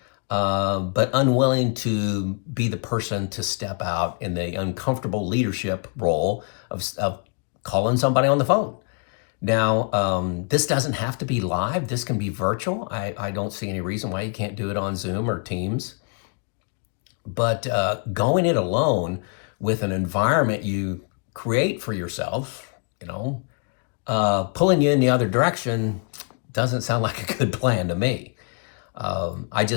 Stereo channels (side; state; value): right; quieter; 38.1 dB